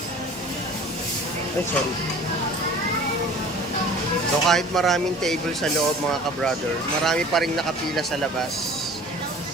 Ay, sorry. So kahit maraming table sa loob mga ka-brother, marami pa rin nakapila sa labas.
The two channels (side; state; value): both; normal; correlation 0.45